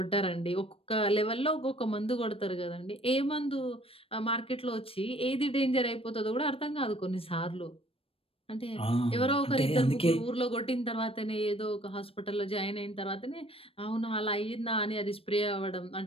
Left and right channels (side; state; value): right; late; 0.27 ms